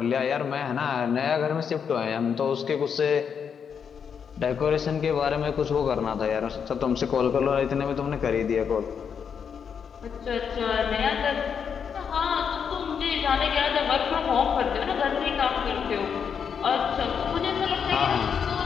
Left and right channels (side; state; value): right; quieter; 7.0 dB